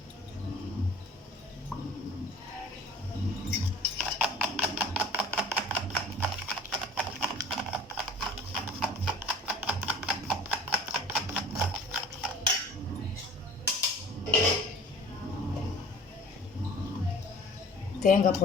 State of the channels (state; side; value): normal; both; correlation 0.45